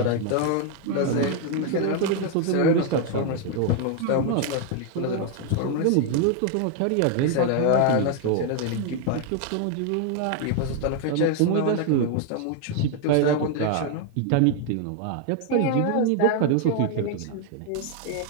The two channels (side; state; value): both; different; correlation 0.00